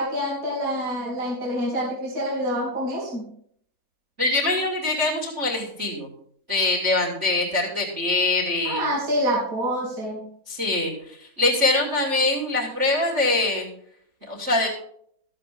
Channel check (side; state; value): left; late; 3.5 ms